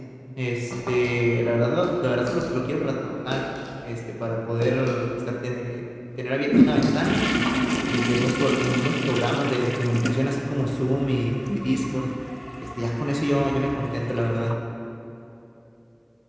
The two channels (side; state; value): both; identical; correlation 1.00